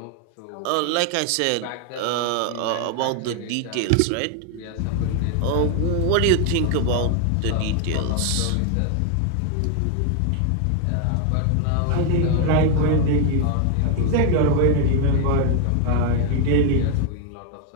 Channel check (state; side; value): different; both; correlation 0.01